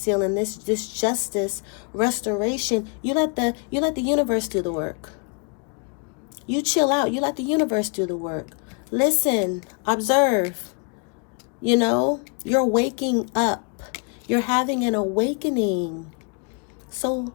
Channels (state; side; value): quieter; right; 38.0 dB